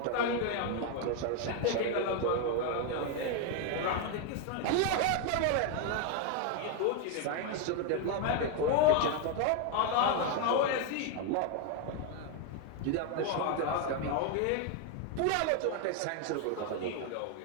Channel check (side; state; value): both; different; correlation 0.01